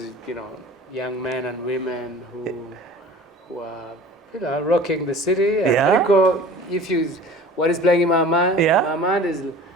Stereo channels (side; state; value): both; normal; correlation 0.42